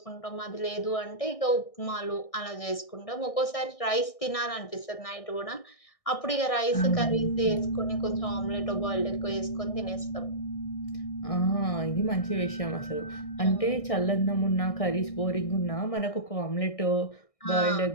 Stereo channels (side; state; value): right; late; 1.6 ms